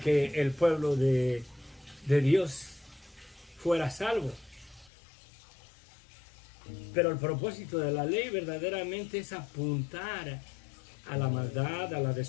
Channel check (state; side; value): drops out; right; at 4.9 s